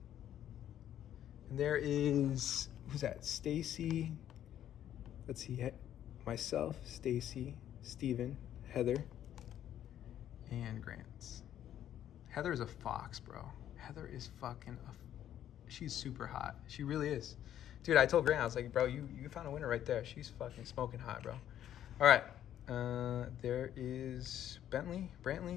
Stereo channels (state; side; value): quieter; right; 11.0 dB